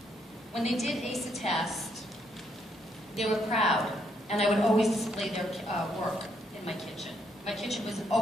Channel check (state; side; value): normal; both; correlation 0.74